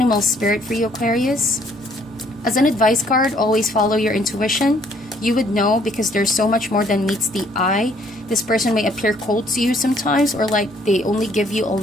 spirit for you, Aquarius. As an advice card, always follow your intuition. You would know, because there's so much more than meets the eye. This person may appear cold to you sometimes, or like they only give you a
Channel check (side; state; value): both; normal; correlation 0.64